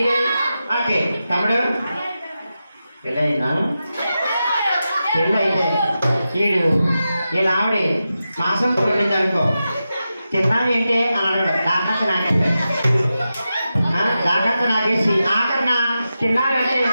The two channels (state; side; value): inverted; both; correlation -0.91